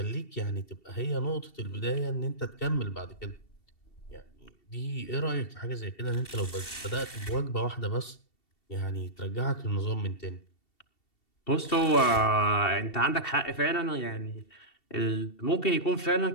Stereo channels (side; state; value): right; late; 2.7 ms